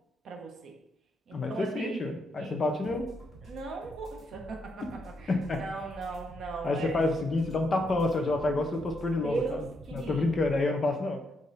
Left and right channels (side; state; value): both; normal; correlation 0.78